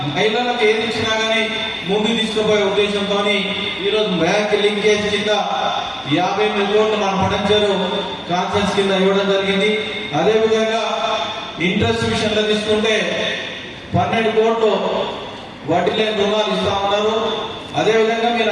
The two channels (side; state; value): both; identical; correlation 1.00